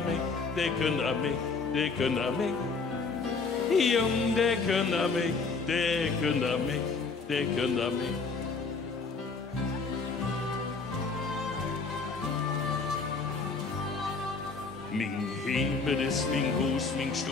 mig, de kunder mig, de kunder mig. Jong, de kunder mig, de kunder mig, de kunder mig. Mijn hemel is mijn huis, mijn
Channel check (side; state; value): right; quieter; 4.4 dB